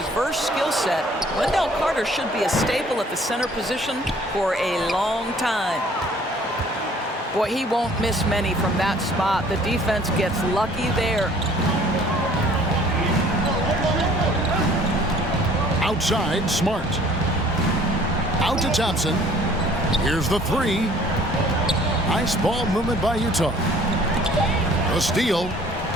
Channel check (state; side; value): normal; both; correlation 0.55